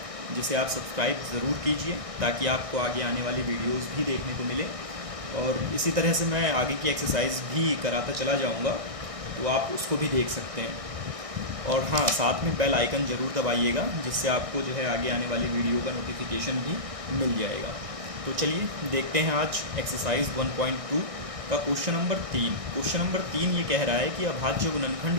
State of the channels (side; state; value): left; late; 1.6 ms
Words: जिसे आप सब्सक्राइब ज़रूर कीजिए ताकि आपको आगे आने वाली वीडियोस भी देखने को मिले। और इसी तरह से मैं आगे की एक्सरसाइज भी कराता चला जाऊँगा, तो आप उसको भी देख सकते हैं। और हाँ, साथ में बेल आइकन ज़रूर दबाइएगा, जिससे आपको जो है आगे आने वाली वीडियो का नोटिफिकेशन भी मिल जाएगा। तो चलिए देखते हैं आज एक्सरसाइज 1.2 का क्वेश्चन नंबर 3। क्वेश्चन नंबर 3 ये कह रहा है कि अभाज्य